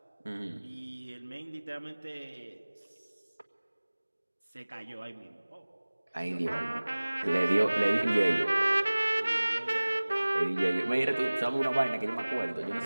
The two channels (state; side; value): inverted; both; correlation -1.00